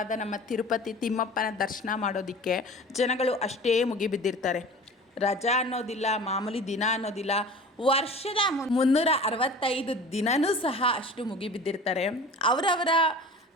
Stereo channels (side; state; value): both; normal; correlation 0.40